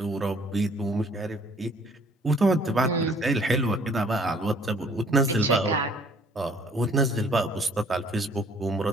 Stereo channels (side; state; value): both; normal; correlation 0.58